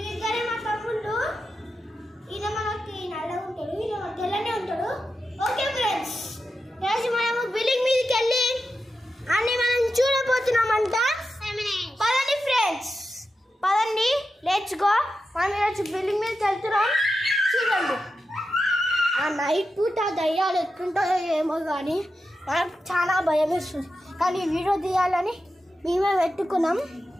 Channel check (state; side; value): normal; both; correlation 0.90